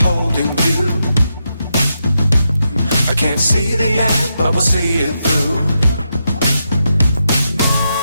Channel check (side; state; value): both; inverted; correlation -0.84